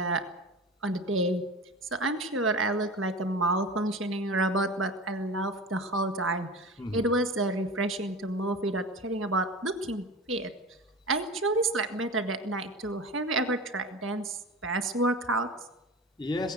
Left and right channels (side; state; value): both; normal; correlation 0.32